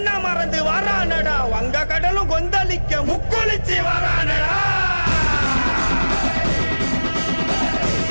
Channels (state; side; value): inverted; both; correlation -1.00